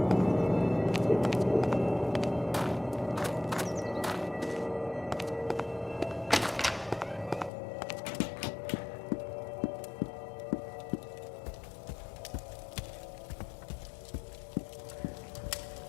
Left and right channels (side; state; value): right; drops out; at 7.5 s